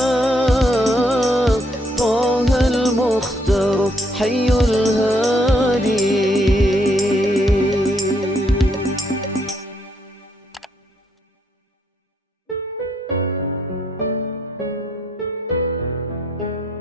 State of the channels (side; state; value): both; normal; correlation 0.72